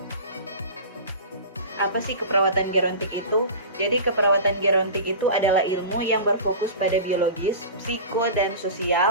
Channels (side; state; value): both; inverted; correlation -0.33